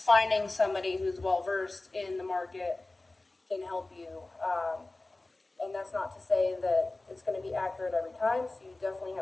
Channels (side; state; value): right; quieter; 3.0 dB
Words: somebody who's well versed in the market can help you. And that's not to say that it's going to be accurate every time. So you definitely